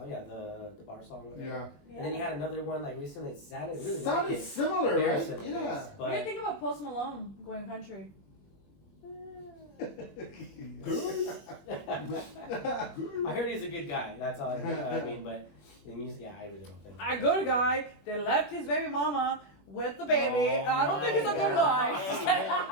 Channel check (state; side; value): late; right; 21 ms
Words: yeah, the bar song. Whatever. Yeah. And then he had another one like recently. It sounded really Sounded like it. similar, Very right? similar, Yeah. yes. What do you But think about Post Malone going country? I heard he's a good guy. That's all I mean. But the music, yeah, I really don't think. A good guy that left his baby mama with the baby. Oh I don't think he's a my good God.